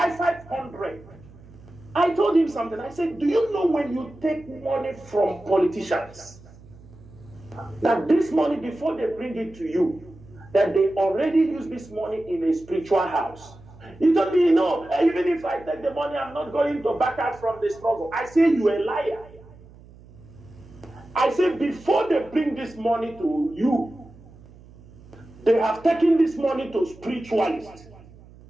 I told him something. I said, "Do you know when you take money from politicians, that this money, before they bring it to you, that they already use this money in a spiritual house?" He told me, "No, even if I take the money, I'm not going to back out from the struggle." I say, "You a liar." I say before they bring this money to you, they have taken this money to spiritualists.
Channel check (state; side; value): noise; right; hum, 22 dB below the sound